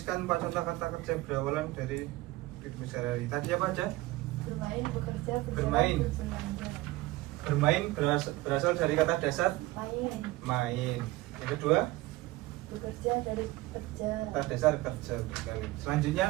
4 contoh kata kerja berawalan dari kehidupan sehari-hari. Tadi apa aja? Bermain, bekerja, berjalan, Bermain. berbelanja. Bermain berasal dari kata dasar Main, main. Yang kedua, bekerja dari kerja. kata dasar kerja sekali. Selanjutnya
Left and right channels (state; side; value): quieter; left; 19.1 dB